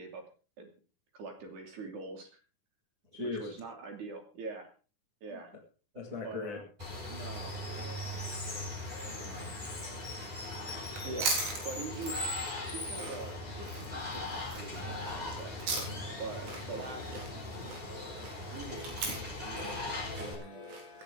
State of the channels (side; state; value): left; late; 9.7 ms